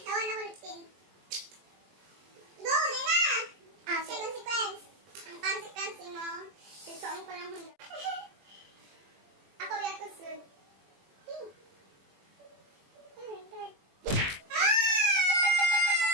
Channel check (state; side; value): late; left; 21 ms